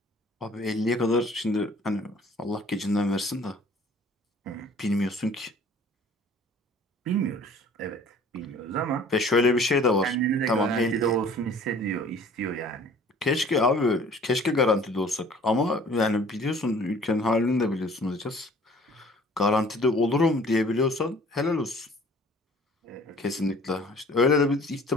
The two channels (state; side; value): normal; both; correlation 0.51